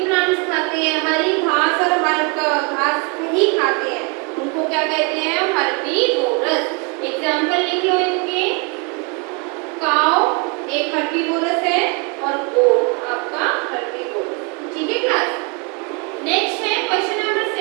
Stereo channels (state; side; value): quieter; left; 32.6 dB